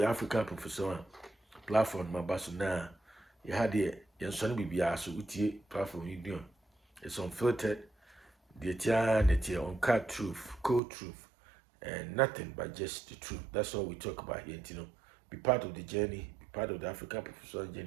African Professor platform my basu na you had the Yansoni Bibia so utie platform you do. It's unfiltered, the uncut truth, cold truth, and nothing but just the truth. That's all we talk about here, Be part of the journey, be part of the African professional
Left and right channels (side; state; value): left; drops out; at 10.8 s